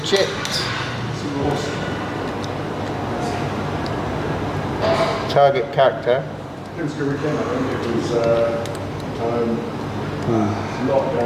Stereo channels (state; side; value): identical; both; correlation 1.00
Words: Target character. Could